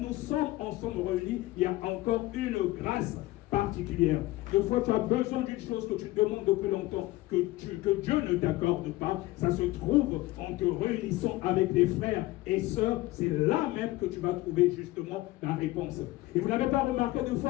sommes ensemble réunis, il y a encore une grâce particulière. Des fois, tu as besoin d'une chose que tu demandes depuis longtemps, que Dieu ne t'accorde pas. Ça se trouve en te réunissant avec les frères et sœurs. C'est là même que tu vas trouver justement la réponse. Et vous n'avez pas remarqué, des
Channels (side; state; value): right; quieter; 18.4 dB